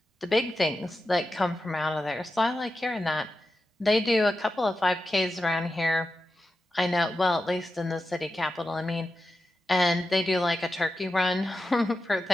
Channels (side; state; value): both; normal; correlation 0.91